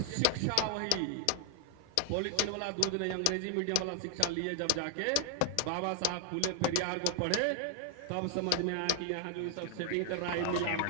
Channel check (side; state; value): both; different; correlation 0.00